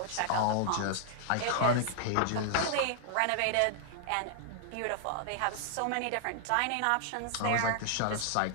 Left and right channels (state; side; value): different; both; correlation -0.01